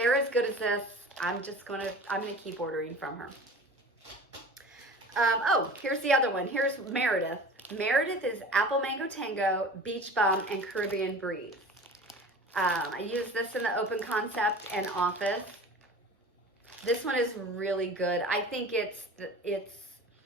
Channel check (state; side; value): normal; both; correlation 0.39